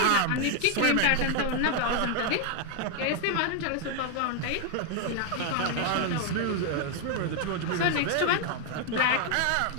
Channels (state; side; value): different; both; correlation 0.01